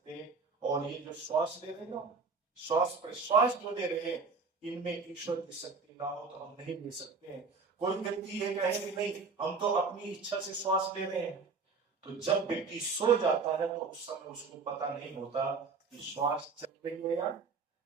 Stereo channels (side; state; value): left; quieter; 4.6 dB